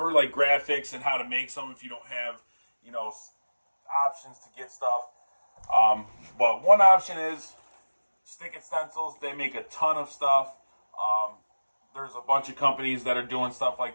like graphics and how to make some if you don't have, options to get stuff. But one option is stick it stencils. They make a ton of stuff. There's a bunch of companies that are doing stuff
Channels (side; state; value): both; inverted; correlation -1.00